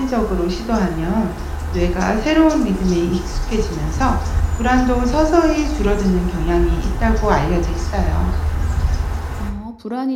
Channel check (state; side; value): identical; both; correlation 1.00